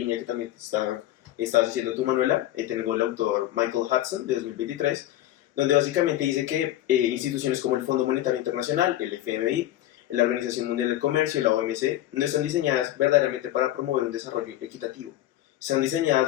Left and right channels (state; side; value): quieter; right; 13.9 dB